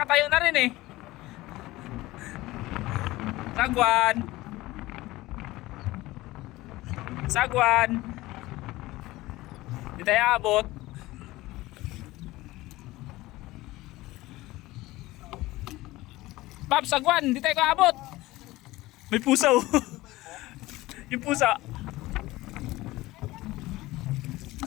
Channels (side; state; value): right; quieter; 18.6 dB